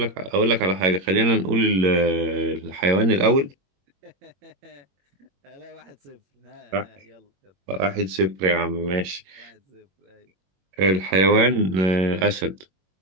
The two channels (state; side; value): late; left; 21 ms